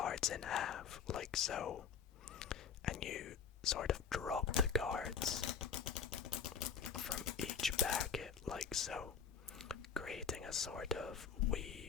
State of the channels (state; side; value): quieter; right; 6.7 dB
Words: in half, like so, and you sort of drop the cards from each packet, like so, creating a sort of